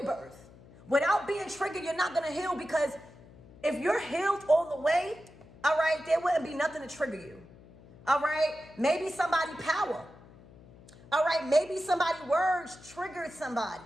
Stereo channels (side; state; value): left; noise; hum, 22 dB below the sound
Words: Without being triggered, you're not going to heal, because if you're healed all the way, all right, there wouldn't be nothing to trigger you. All right, maybe somebody power. All right, maybe somebody words triggered somebody.